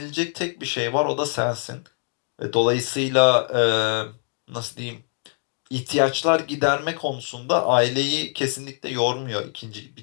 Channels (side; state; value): right; silent; 56 dB below the other